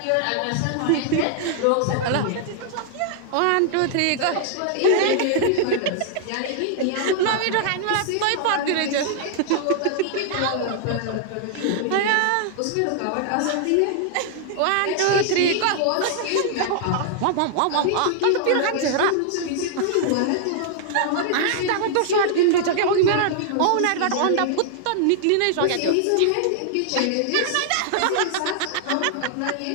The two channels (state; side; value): different; both; correlation -0.01